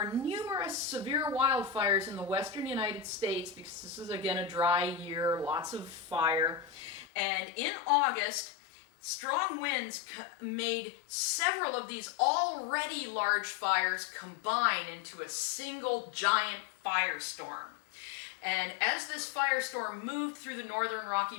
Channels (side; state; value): right; drops out; at 7.1 s